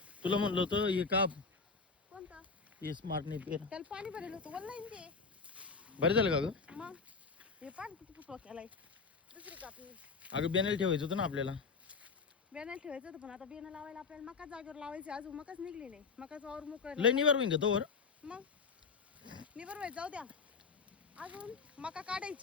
तुला म्हणलं होतं हे काप. कोणतं? हे स्मार्ट नाही पेर. त्याला पाणी भरायला होतं वल्लाय ते. बरं झालं का ग? मग हे पाणी किती फुटवा केलाय. दुसरी कापणी. अगं बेनेल ठेवायचं होतं ना आपल्याला. बेनाला ठेवायचं होतं पण आता बेना लावायला आपल्याला मका जागेवर लावायची. अजून मकाच निघली नाही. मकाच वावर मोकळं लय निवार होईन का तोवर? मग निबर व्हायचं जाऊ द्या. अजून मका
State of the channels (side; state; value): right; quieter; 4.8 dB